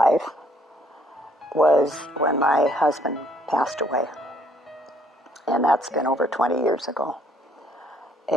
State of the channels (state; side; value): normal; both; correlation 0.65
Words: was when my husband passed away. And that's been over 20 years ago.